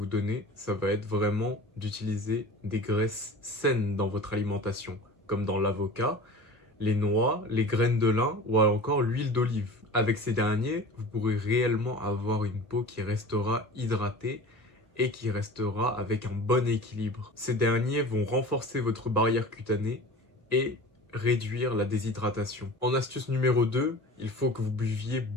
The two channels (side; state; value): both; normal; correlation 0.37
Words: donner, ça va être vraiment d'utiliser des graisses saines dans votre alimentation, comme dans l'avocat, les noix, les graines de lin ou encore l'huile d'olive. Avec ces derniers, vous pourrez réellement avoir une peau qui restera hydratée et qui restera avec un bon équilibre. Ces derniers vont renforcer votre barrière cutanée et réduire la déshydratation. En astuce numéro 2, il faut que vous buviez